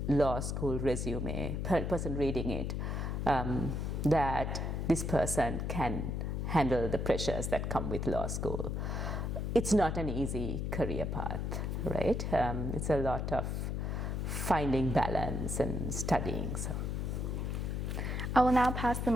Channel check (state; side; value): noise; left; hum, 1 dB below the sound